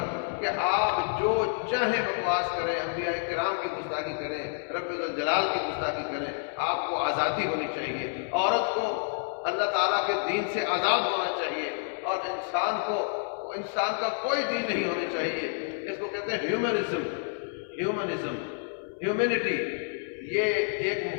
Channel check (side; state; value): right; silent; 59 dB below the other